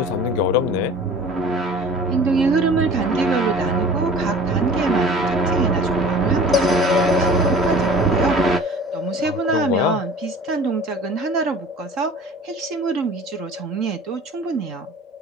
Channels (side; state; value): both; normal; correlation 0.44